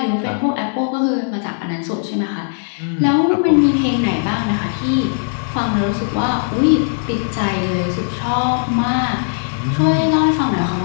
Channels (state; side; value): silent; right; 67 dB below the other